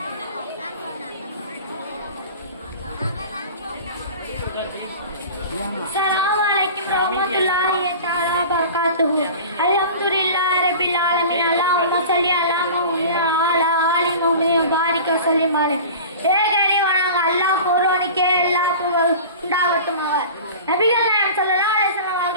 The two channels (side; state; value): both; inverted; correlation -0.38